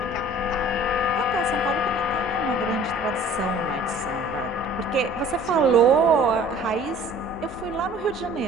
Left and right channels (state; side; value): normal; both; correlation 0.49